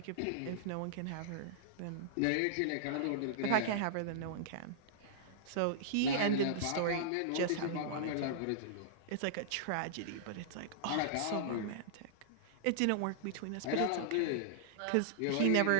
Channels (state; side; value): different; both; correlation -0.01